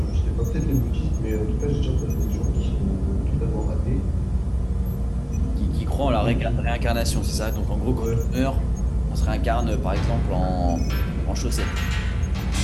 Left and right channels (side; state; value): both; identical; correlation 1.00